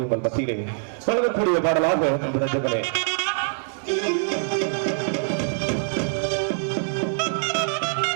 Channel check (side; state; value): left; silent; digital silence